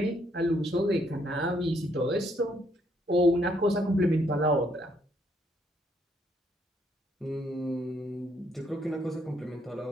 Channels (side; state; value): both; normal; correlation 0.70